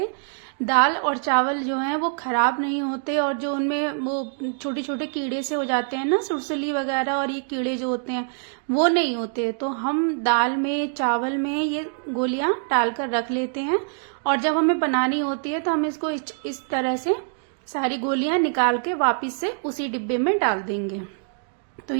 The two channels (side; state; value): left; silent; 62 dB below the other